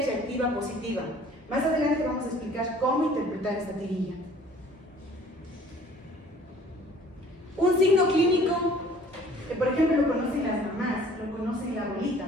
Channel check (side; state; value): both; normal; correlation 0.53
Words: reactiva positiva. Más adelante vamos a explicar cómo interpretar esta tirilla. Un signo clínico que, por ejemplo, lo conocen las mamás, lo conocen la abuelita.